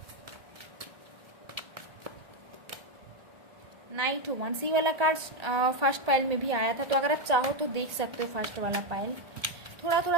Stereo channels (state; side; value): late; left; 1.8 ms